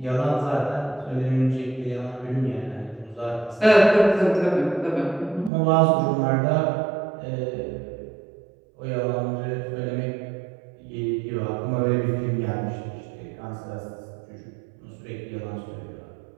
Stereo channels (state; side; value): drops out; left; at 5.5 s